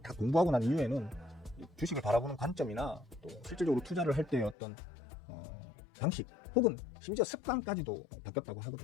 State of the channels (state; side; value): drops out; right; at 4.5 s